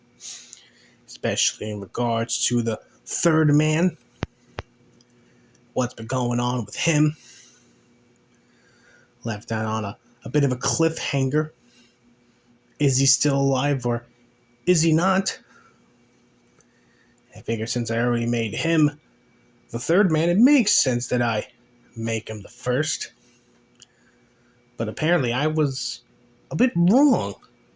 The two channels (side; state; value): both; identical; correlation 1.00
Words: especially in regards to the third man, what's been going on with him. Left that on a bit of a cliffhanger. Is he still alive or is he not? I figure since I already made him the third man, it makes sense that I make him the first. But apparently I was a bit wrong